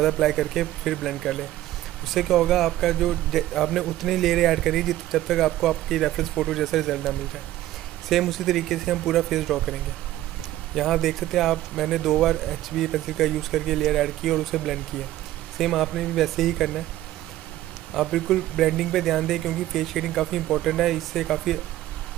अप्लाई करके फिर ब्लेंड कर लें। उससे क्या होगा, आपका जो आपने उतनी लेयर ऐड करी जब तक आपको आपकी रेफरेंस फ़ोटो जैसा रिजल्ट ना मिल जाए। सेम उसी तरीके से हम पूरा फेस ड्रॉ करेंगे। यहाँ देख सकते हैं आप, मैंने 2 बार HB पेंसिल का यूज़ करके लेयर ऐड की और उसे ब्लेंड किया। सेम आपने भी वैसे ही करना है। आप बिल्कुल ब्लेंडिंग पे ध्यान दें क्योंकि फेस शेडिंग काफ़ी इंपॉर्टेंट है। इससे काफ़ी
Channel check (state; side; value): quieter; left; 14.6 dB